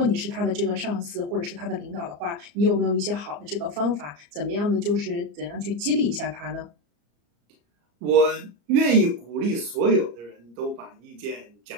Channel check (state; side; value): late; left; 34 ms